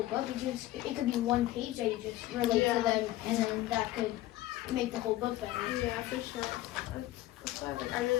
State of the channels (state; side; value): quieter; right; 15.8 dB